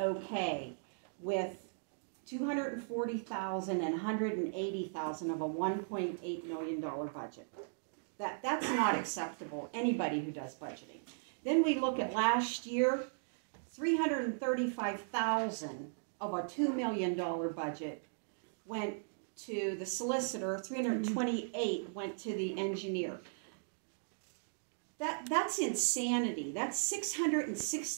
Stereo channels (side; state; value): left; silent; digital silence